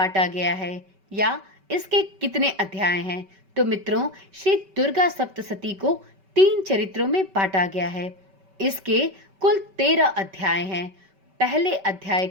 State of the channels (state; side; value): late; left; 5.2 ms